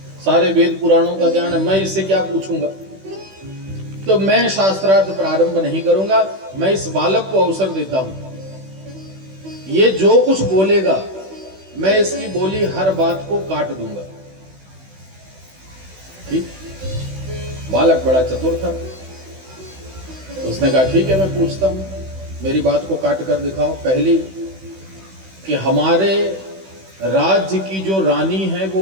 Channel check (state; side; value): late; left; 16 ms